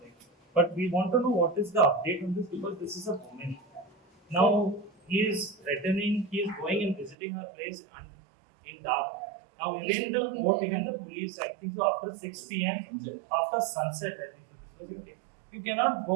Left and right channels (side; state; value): left; drops out; at 7.2 s